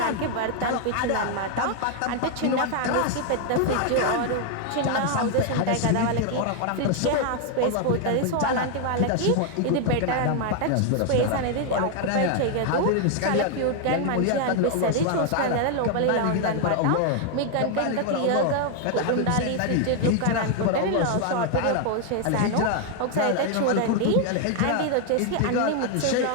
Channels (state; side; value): different; both; correlation 0.00